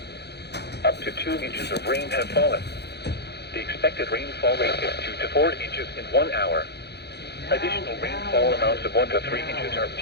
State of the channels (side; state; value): right; late; 0.48 ms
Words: Up to 2 inches of rain have fallen. The expected rainfall rate is 2 to 4 inches in 1 hour. Additional rainfall amounts of 1 to 3 inches are